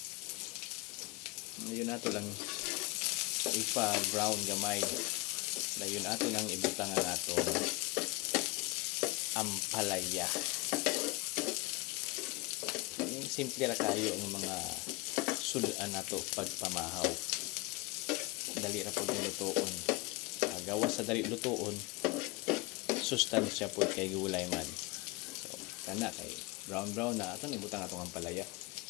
Ngayon ato lang ipa-brown gamay. Ngayon ato nang ibutang ang atong ampalaya. Simple ra kayo ang mga sudan nato pagpamahaw. Dali ra pud lutoon. Gawas sa dali lutoon, sustansya pud kay gulay man. Kana kay brown na ato nibutang atong ampalaya.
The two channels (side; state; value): right; quieter; 23.0 dB